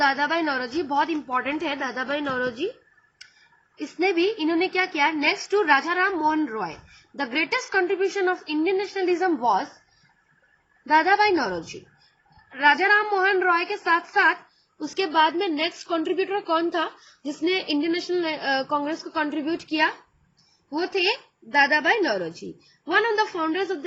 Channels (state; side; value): identical; both; correlation 1.00